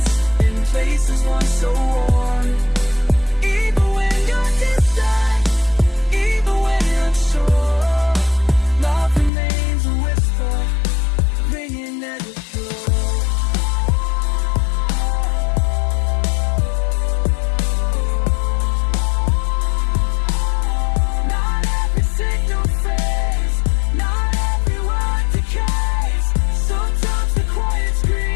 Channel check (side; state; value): right; drops out; at 9.3 s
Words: in places once so warm. Even when you're distant, even when you're unsure, love remains a whisper, ringing at the shore. Not every signal fades, not every word decays. Sometimes the quiet